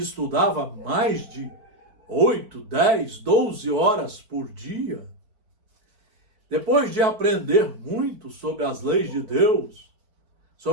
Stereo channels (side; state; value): left; late; 4.7 ms